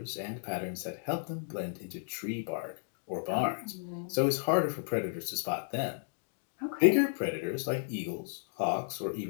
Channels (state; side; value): silent; right; digital silence